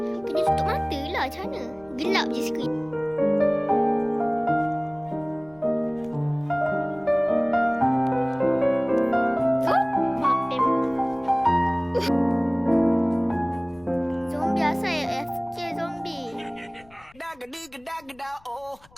Kena tutup mata lah. Macam mana? Gelap je skrin. Zombie asal AFK zombie. Oh,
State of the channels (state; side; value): noise; left; rumble, 29 dB below the sound